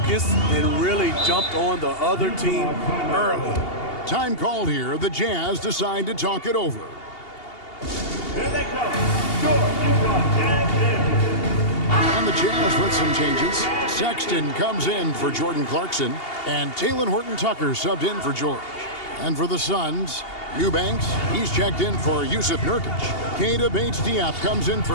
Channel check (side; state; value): right; late; 2.8 ms